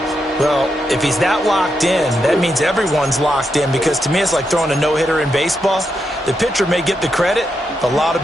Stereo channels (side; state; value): both; normal; correlation 0.83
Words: Well, if he's that locked in, that means everyone's locked in, because to me it's like throwing a no-hitter in baseball. The pitcher may get the credit, a lot of